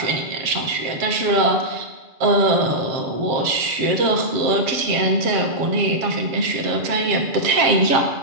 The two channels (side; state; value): left; late; 7.4 ms